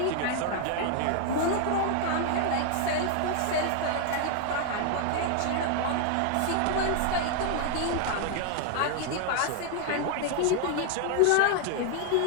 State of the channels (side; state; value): both; different; correlation 0.00